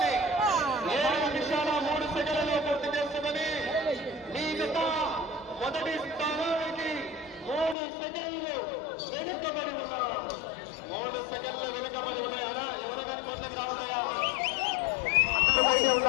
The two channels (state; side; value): drops out; right; at 7.8 s